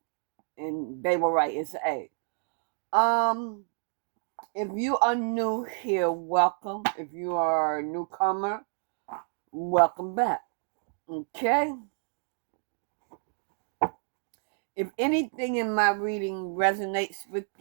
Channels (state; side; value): silent; left; 58 dB below the other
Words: and they were right. It's A. If you are new here, welcome. If you are a newcomer, welcome back. Okay? If anything in my reading resonates with